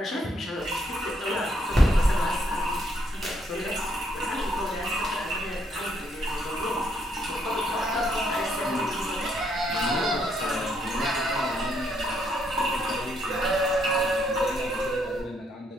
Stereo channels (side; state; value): both; normal; correlation 0.72